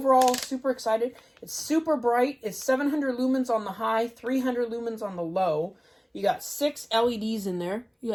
super excited. It's super bright. It's 700 lumens on the high, 300 lumens on the low. You got 6 LEDs in there. You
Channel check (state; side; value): identical; both; correlation 1.00